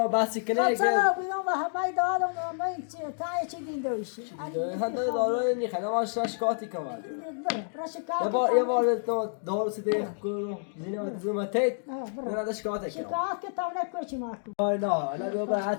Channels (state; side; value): silent; right; digital silence